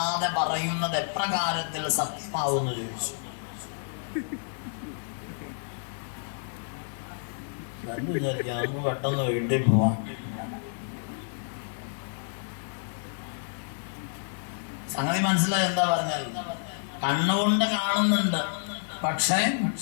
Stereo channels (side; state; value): right; silent; digital silence